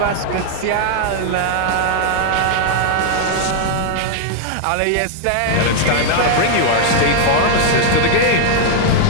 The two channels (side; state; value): both; different; correlation 0.00